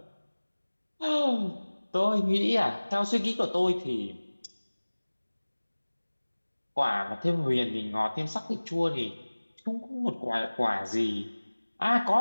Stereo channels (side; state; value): both; inverted; correlation -1.00